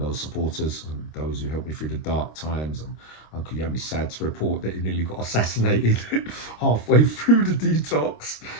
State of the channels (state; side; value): late; right; 26 ms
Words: supporters and those who helped me through the dark times. And Uncle Yami's sad to report that he nearly got assassinated halfway through the detox